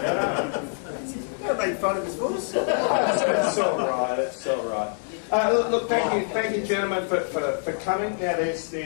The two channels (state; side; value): silent; right; 62 dB below the other